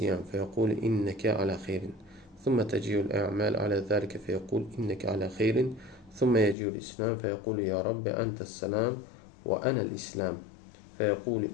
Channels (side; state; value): right; drops out; at 6.6 s